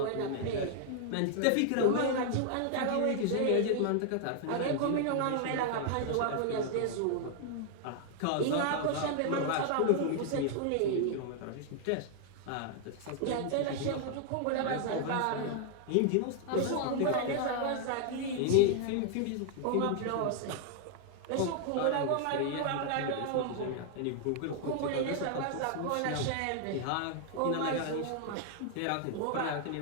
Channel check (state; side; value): different; both; correlation 0.00